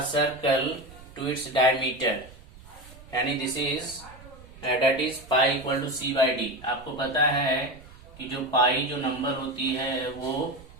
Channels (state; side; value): noise; right; rumble, 20 dB below the sound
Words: circle to its diameter, यानी this is that is pi equal to c/d। आपको पता है कि जो पाई जो नंबर होती है वो